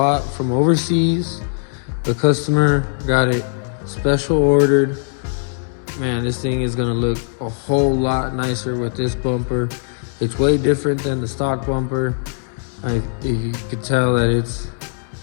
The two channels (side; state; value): right; silent; digital silence